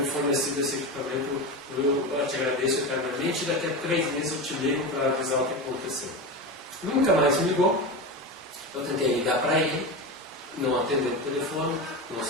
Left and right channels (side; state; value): both; normal; correlation 0.22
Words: fornecido esse equipamento. Eu te agradeço eternamente, e daqui a 3 meses eu te ligo para avisar o que aconteceu. Nunca mais me ligou, Eu tentei ligar para ele, não atendeu o telefone, não